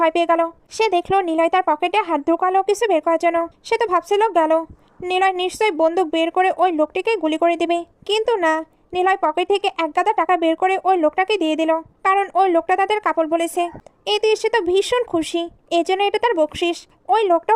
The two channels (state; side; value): identical; both; correlation 1.00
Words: পেয়ে গেল। সে দেখলো নিলয় তার পকেটে হাত ঢুকালো কিছু বের করার জন্য। সে তো ভাবছিল গেল, নিলয় নিশ্চয়ই বন্দুক বের করে ওই লোকটিকে গুলি করে দিবে, কিন্তু না, নিলয় পকেট থেকে 1 গাদা টাকা বের করে ওই লোকটাকে দিয়ে দিল, কারণ ওই লোকটা তাদের কাপড় বলেছে। এতে সে তো ভীষণ খুশি, এজন্য এটা তার বকশিস। ওই